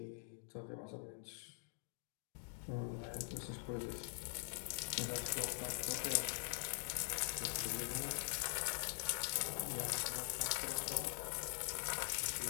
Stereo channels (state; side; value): silent; right; digital silence